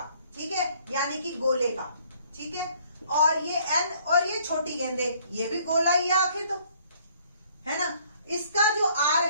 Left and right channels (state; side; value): inverted; both; correlation -0.61